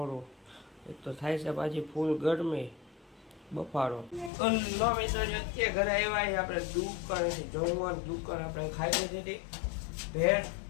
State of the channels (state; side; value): drops out; right; at 4.3 s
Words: એક તો થાય છે, પાછી ફૂલ ગરમી બફારો. લો મિત્રો, અત્યારે ઘરે આવ્યા આપણે દુકાનેથી જમવાનું. દુકાન આપણે ખાઈ લીધી ભેળ.